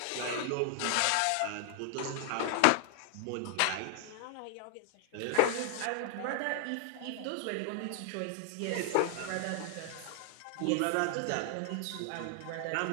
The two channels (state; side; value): different; both; correlation 0.00